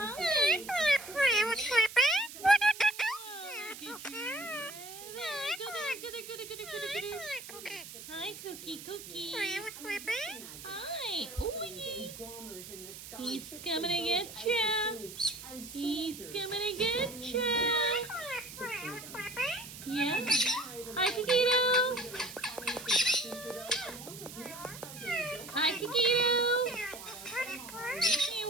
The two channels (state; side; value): noise; right; hiss, 13 dB below the sound